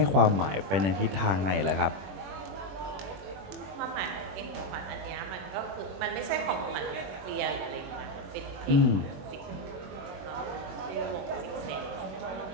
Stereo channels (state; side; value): late; left; 21 ms